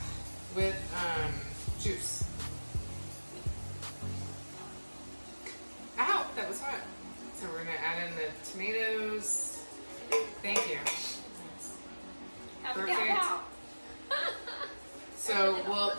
with juice. Ow, that was hot. So we're gonna add in the tomatoes. Thank you. Have a Perfect. pow. So we'll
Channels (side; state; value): both; inverted; correlation -1.00